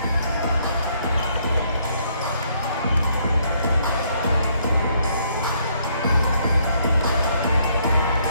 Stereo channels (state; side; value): inverted; both; correlation -0.69